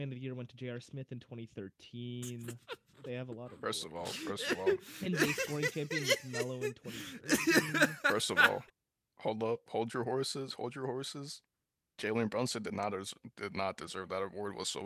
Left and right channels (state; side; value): identical; both; correlation 1.00